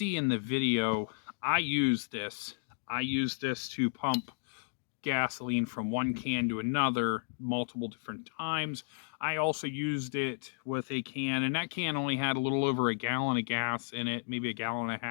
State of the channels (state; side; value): silent; right; digital silence